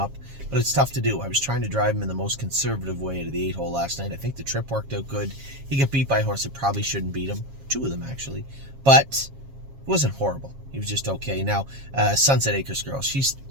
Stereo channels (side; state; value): left; late; 7.3 ms